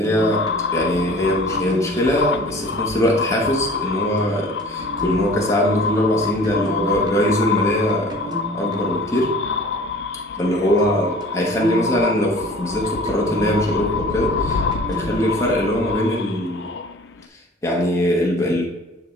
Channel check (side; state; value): both; normal; correlation 0.46